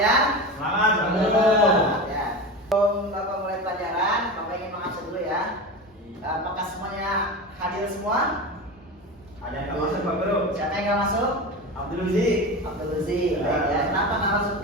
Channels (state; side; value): normal; both; correlation 0.26